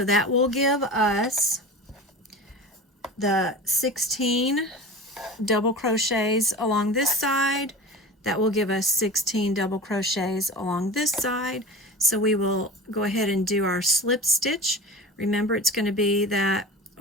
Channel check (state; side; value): normal; both; correlation 0.33